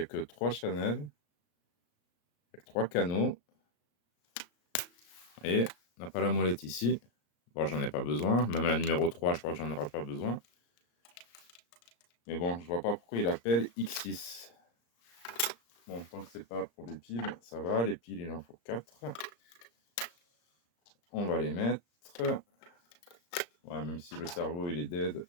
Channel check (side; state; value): right; late; 34 ms